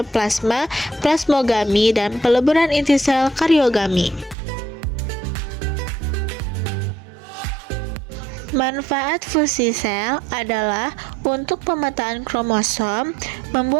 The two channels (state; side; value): drops out; left; at 4.4 s